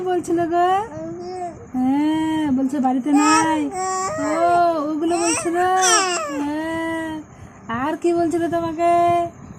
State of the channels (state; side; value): identical; both; correlation 1.00